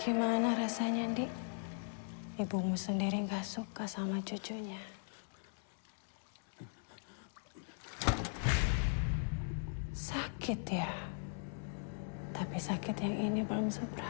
Gimana rasanya, Dik? Ibumu sendiri gak suka sama cucunya. Sakit ya? Tapi sakit yang ini belum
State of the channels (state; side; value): silent; right; digital silence